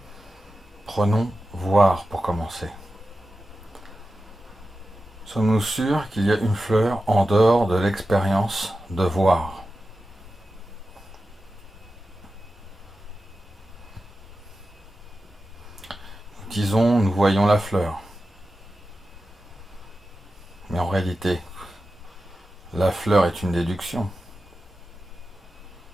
Prenons voir pour commencer. Sommes-nous sûrs qu'il y a une fleur en dehors de l'expérience de voir? Disons, nous voyons la fleur. Mais en réalité, la fleur est une déduction.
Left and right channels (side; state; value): both; normal; correlation 0.93